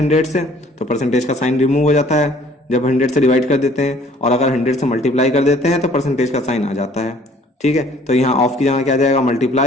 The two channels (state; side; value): normal; both; correlation 0.56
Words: से, तो परसेंटेज का साइन रिमूव हो जाता है जब 100 से डिवाइड कर देते हैं। और अगर 100 से मल्टीप्लाई कर देते हैं तो परसेंटेज का साइन आ जाता है, ठीक है। तो यहाँ ऑफ की जगह क्या जाएगा?